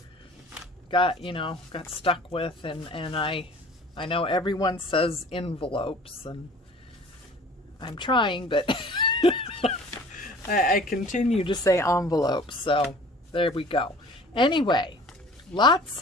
got stuck with, and I know everyone says envelopes, and I'm trying, but I continue to say envelopes, so there we go. Anyway, lots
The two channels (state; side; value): normal; both; correlation 0.47